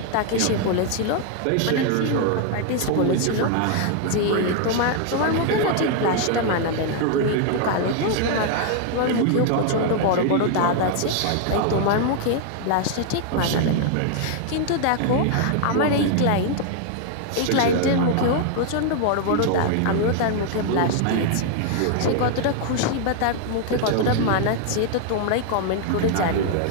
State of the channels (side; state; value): both; different; correlation 0.00